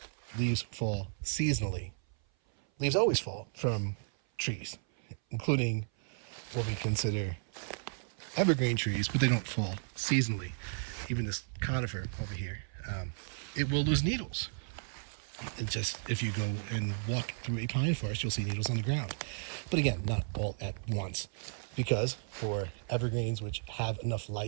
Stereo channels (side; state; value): left; silent; 55 dB below the other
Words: leaves fall seasonally. Leaves always fall from trees, including what we consider evergreen trees, but they don't fall seasonally. Even this conifer over here, it will lose needles. If you go and walk through a pine forest, you'll see needles on the ground. But again, not all at once, because for evergreens, which have enough